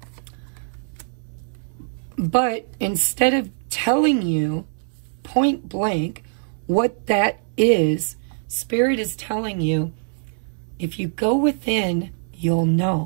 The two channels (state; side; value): silent; left; 63 dB below the other